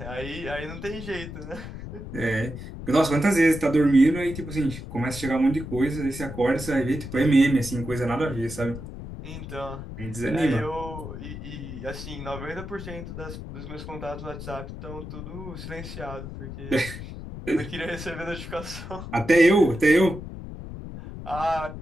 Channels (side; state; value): left; noise; rumble, 10 dB below the sound